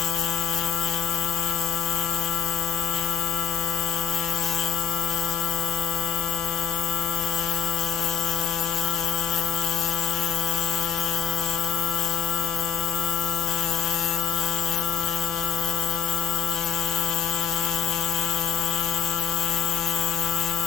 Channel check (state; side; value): quieter; right; 7.7 dB